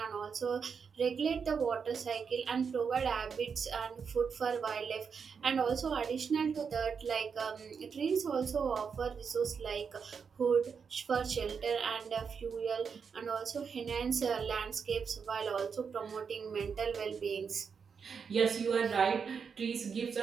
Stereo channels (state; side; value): quieter; left; 6.1 dB